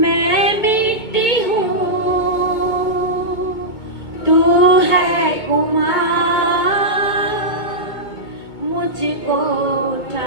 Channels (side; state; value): right; late; 2.2 ms